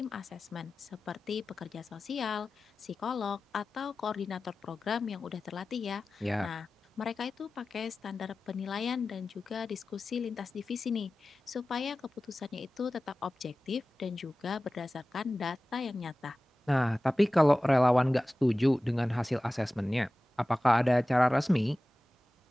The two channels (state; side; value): normal; both; correlation 0.96